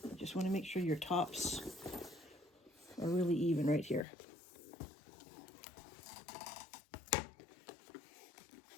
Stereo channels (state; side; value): drops out; right; at 4.0 s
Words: You just want to make sure your tops are really even right here.